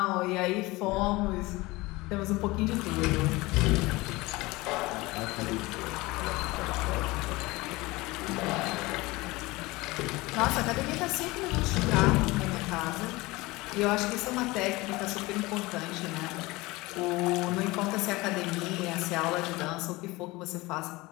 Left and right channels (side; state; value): right; quieter; 21.6 dB